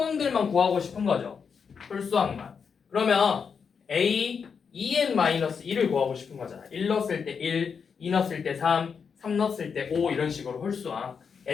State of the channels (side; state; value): right; quieter; 6.2 dB